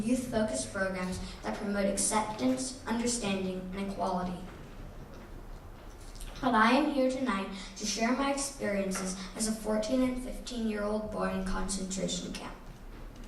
youth-focused programs that promote acceptance, understanding, and equality. But I am here tonight to share my experiences as a 14 and 15-year-old boy in concentration camp.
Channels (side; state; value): both; identical; correlation 1.00